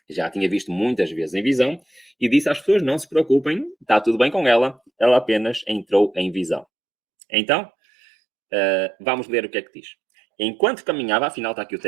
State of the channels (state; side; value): drops out; left; at 6.7 s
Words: já tinha visto muitas vezes em visão e disse às pessoas, não se preocupem, está tudo bem com ela, ela apenas entrou em visão. Então, Vamos ler o que é que diz. Enquanto caminhava, afinal está aqui o